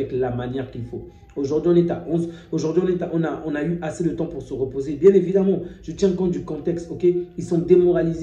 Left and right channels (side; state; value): both; identical; correlation 1.00